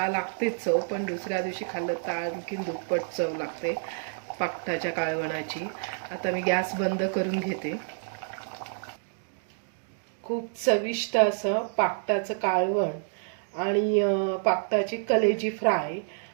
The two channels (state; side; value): silent; left; digital silence